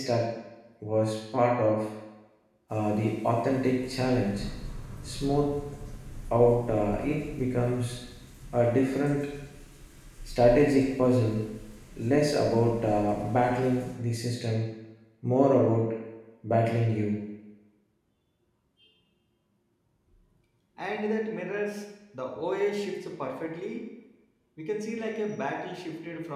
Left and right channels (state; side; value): identical; both; correlation 1.00